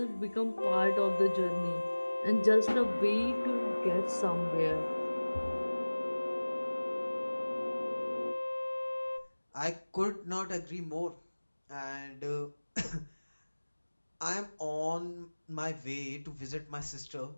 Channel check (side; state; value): both; inverted; correlation -1.00